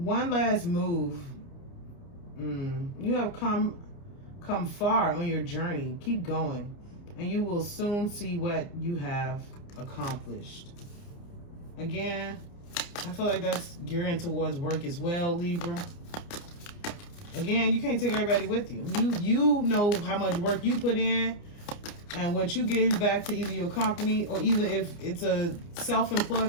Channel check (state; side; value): late; right; 29 ms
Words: last move. You have come far on your journey. Keep going, and you will soon see what you have accomplished. Again, I feel like that's gearing towards work as well, Libra. Again, you can't take everybody with you. You know how much work you put in and what you give back to either your company or either if it's a